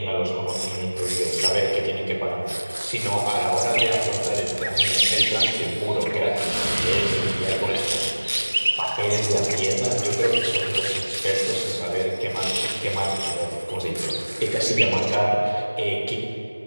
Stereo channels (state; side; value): inverted; both; correlation -1.00